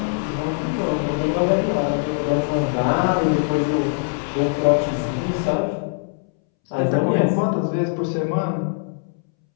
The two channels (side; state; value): right; silent; 64 dB below the other